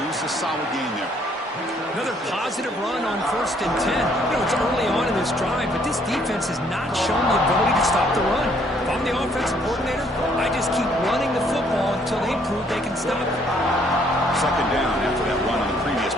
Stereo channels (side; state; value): both; normal; correlation 0.65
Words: a solid gain there. Another positive run on 1st and 10. You know, it's early on in this drive, but this defense has not shown the ability to stop the run. If I'm the offensive coordinator, I just keep running the football until they prove they can stop it. Second down after that run on the previous